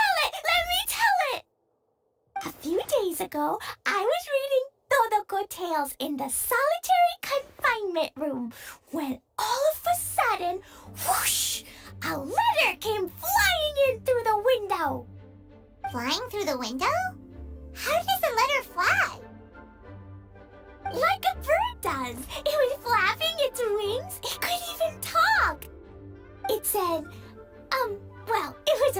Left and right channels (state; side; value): identical; both; correlation 1.00